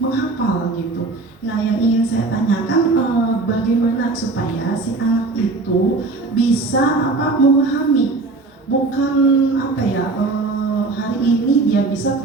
menghafal gitu. Nah yang ingin saya tanyakan, bagaimana supaya si anak itu bisa memahami, bukan hari ini dia bisa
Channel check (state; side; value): quieter; left; 3.5 dB